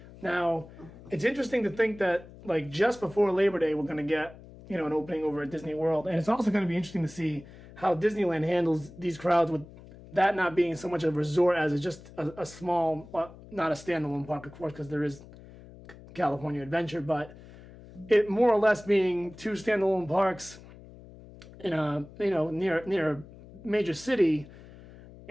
Now, it's interesting to think that, just before Labor Day, we're going to get, an opening over at Disney World. And it's also going to be interesting to see how Disneyland handles these crowds with that not being so much a resort as it's just a small, not a standalone park, of course, because there is California Adventure, but it more or less being two standalone parks in a near a major city,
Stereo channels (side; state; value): left; noise; hum, 19 dB below the sound